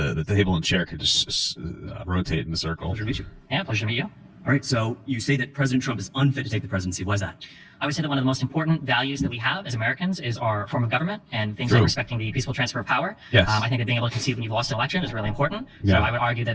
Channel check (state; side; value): identical; both; correlation 1.00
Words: table and chair could just rotate in a circle. Pleasure to meet you. Yeah, pleasure to meet you. All right, so you say that President Trump is unfit to take the presidency. Why is that? I would say that one of the most important values that we have as Americans is our form of government and things True. like respecting the peaceful transfer of power. Yes. I think that being able to concede when you've lost an election is really important. Yeah. So I would argue